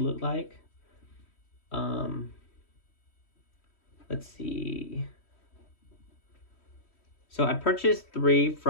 like. Let's see. So I purchased 3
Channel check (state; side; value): late; right; 3.1 ms